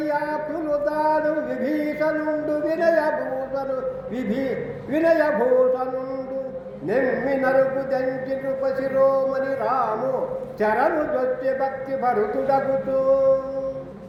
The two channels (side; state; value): both; identical; correlation 1.00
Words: విభీషణుండు వినయభూషణుండు నెమ్మి నరుకు దంచి నృపశిరోమణి రాము చరణు దొచ్చి భక్తి భరుతుడగుతూ